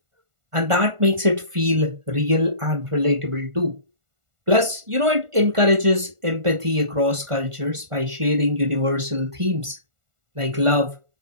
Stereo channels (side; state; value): left; late; 1.4 ms